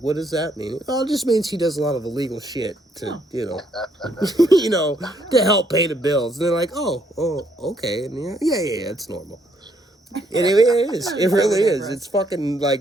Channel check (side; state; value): both; normal; correlation 0.71